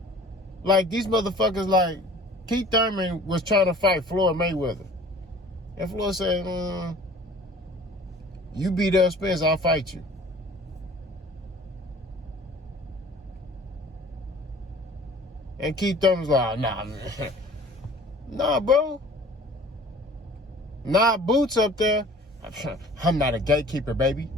Like, these motherfuckers, like, Keith Thurman was trying to fight Floyd Mayweather. And Floyd said, you beat Errol Spence, I'll fight you. And Keith Thurman's like, nah, man. Nah, bro. Nah, Boots up there. I'm not a gatekeeper, baby.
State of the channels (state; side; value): normal; both; correlation 0.48